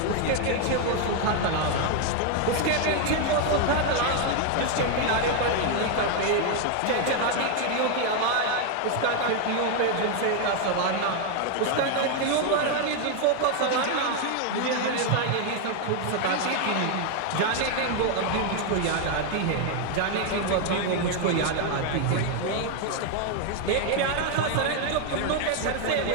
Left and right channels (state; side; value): different; both; correlation 0.01